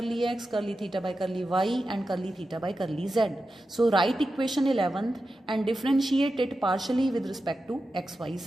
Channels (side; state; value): both; normal; correlation 0.91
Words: x, curly theta by curly y, and curly theta by curly z. So write equation 11th and differentiate it partially with respect to x, y,